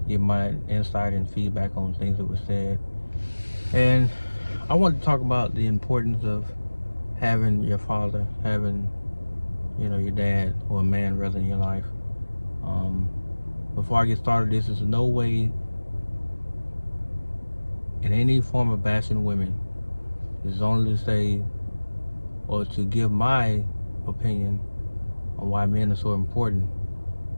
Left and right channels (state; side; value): inverted; both; correlation -1.00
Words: give my insight and feedback on things that were said. And I wanted to talk about the importance of having your father, having, your dad or a man rather in your life. Before I get started, this is no way in any form of bashing women. It's only to say, or to give my opinion on why men are so important